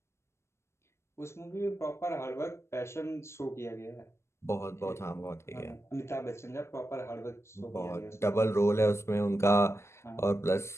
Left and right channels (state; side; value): late; right; 0.13 ms